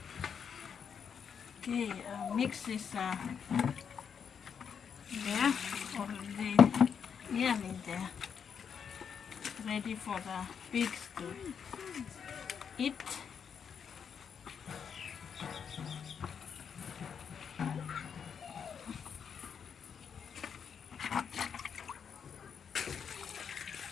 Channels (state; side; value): quieter; right; 7.1 dB